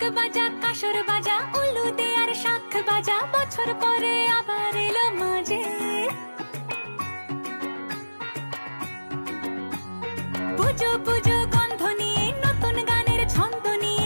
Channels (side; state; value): both; inverted; correlation -1.00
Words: বাজা কাসর বাজা উলু দে আর শাখ বাজা বছর পরে আবার এলো মাঝে। পুজো পুজো গন্ধ নিয়ে নতুন গানের ছন্দ